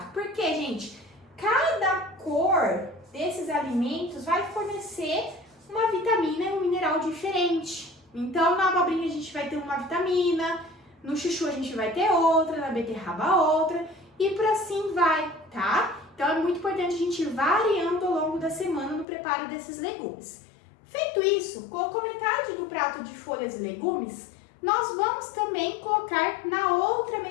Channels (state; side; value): drops out; right; at 19.1 s